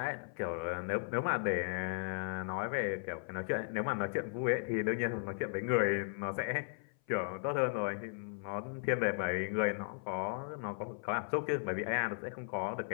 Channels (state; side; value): silent; right; 53 dB below the other